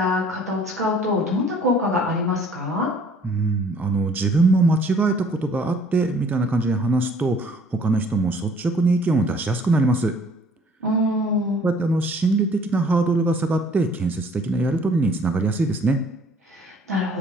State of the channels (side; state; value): both; normal; correlation 0.57